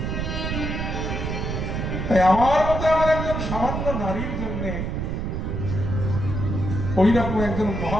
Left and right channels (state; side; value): noise; right; rumble, 2 dB below the sound